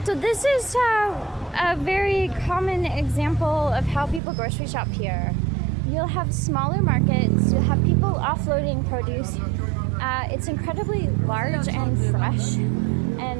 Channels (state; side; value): drops out; left; at 4.2 s